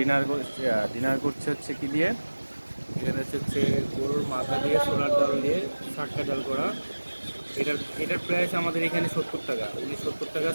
করছে হচ্ছে কি দিয়ে, এখানে হচ্ছে গরুর মাথা দিয়ে ছোলার ডাল দিয়ে শাক্কা ডাল করা। এটার প্রাইস আমাদের এখানে 70 টাকা, উনি 70 টাকা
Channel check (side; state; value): both; inverted; correlation -1.00